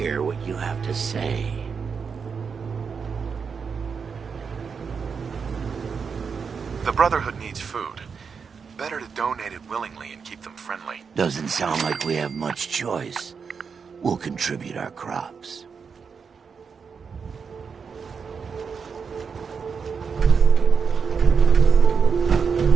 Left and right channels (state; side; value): quieter; left; 5.9 dB